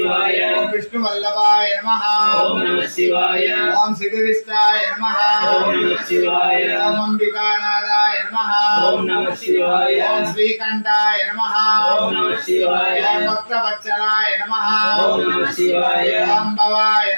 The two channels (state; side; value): inverted; both; correlation -1.00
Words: ఓం విష్ణువల్లభాయ నమః ఓం నమః శివాయ ఓం శివవిష్టాయ నమః ఓం నమః శివాయ ఓం అంబికానాథాయ నమః ఓం నమః శివాయ ఓం శ్రీకంఠాయ నమః ఓం నమః శివాయ ఓం భక్తవత్సలాయ నమః ఓం నమః శివాయ ఓం భవాయ